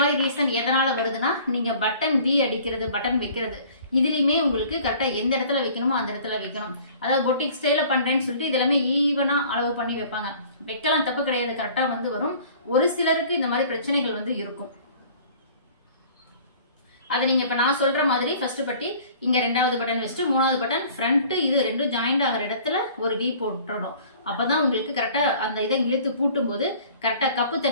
ரீசன் எதனால வருதுன்னா நீங்க பட்டன் வி அடிக்கிறது, பட்டன் வைக்கிறது இதுலயுமே உங்களுக்கு கரெக்டா எந்த இடத்துல வைக்கணுமோ அந்த இடத்துல வைக்கணும். அதாவது பொட்டிக் ஸ்டைல பண்றேன்னு சொல்லிட்டு இது எல்லாமே ஈவனா அளவு பண்ணி வைப்பாங்க. வைக்கலாம், தப்பு கிடையாது, கரெக்டா வந்து வரும். ஒரு சிலருக்கு இந்த மாதிரி பிரச்சனைகள் வந்து இருக்கும். அது நீங்க இப்ப நான் சொல்ற மாதிரி ஃபர்ஸ்ட் பட்டி இங்க ரெண்டாவது பட்டன் வச்சுட்டு மூணாவது பட்டன் ஃப்ரண்ட் இது ரெண்டும் ஜாயிண்ட் ஆகிற இடத்துல ஒரு வி போட்டுறணும். அப்பதான் உங்களுக்கு கரெக்டா அந்த இதை இழுத்து பூட்டும் போது கரெக்டா கப்பு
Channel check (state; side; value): inverted; both; correlation -0.49